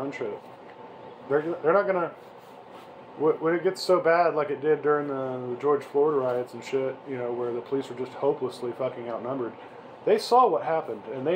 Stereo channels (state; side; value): identical; both; correlation 1.00